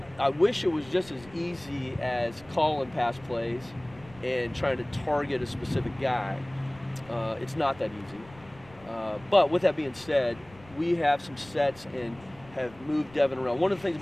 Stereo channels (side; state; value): left; noise; rumble, 23 dB below the sound